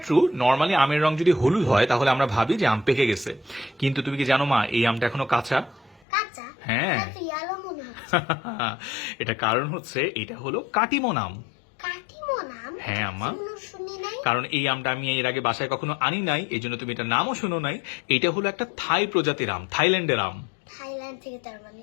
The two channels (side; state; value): right; drops out; at 6.1 s